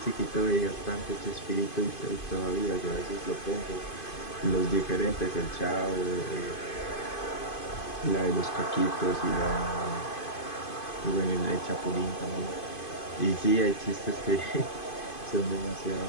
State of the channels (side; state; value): right; late; 2.5 ms